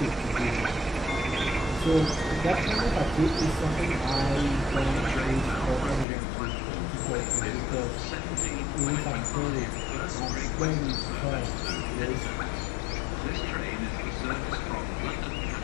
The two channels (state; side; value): drops out; right; at 6.1 s